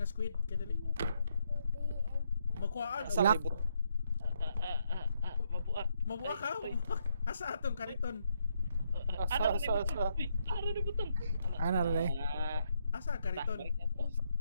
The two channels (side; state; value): both; inverted; correlation -0.75